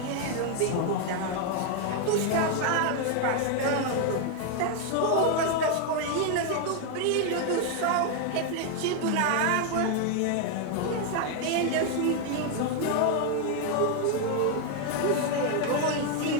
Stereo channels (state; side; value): different; both; correlation 0.01